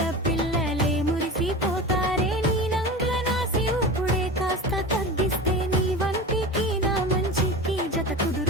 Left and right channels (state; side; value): normal; both; correlation 0.31